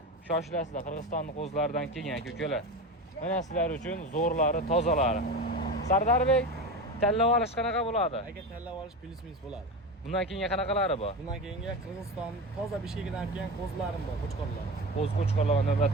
shoshilasizlar. Qirg'izistonning qo'zilaridan kelgan aka-ukalar. Mana sizlar uchun zo'rlari, tozalari. Sardarbek, tanlab olish qanaqa bo'ladi? Aka, tanlab olish plus minus bo'ladi. Bundan keyingi qanaqalari bor? Bundan keyingi Qirg'iziston toza Bishkekidan kelgan qo'zilarim bor, qo'chqorlar. Qo'chqorlarga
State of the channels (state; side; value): normal; both; correlation 0.24